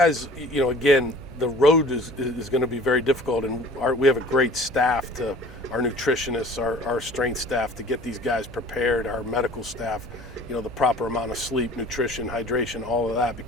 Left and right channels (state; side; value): noise; left; hum, 22 dB below the sound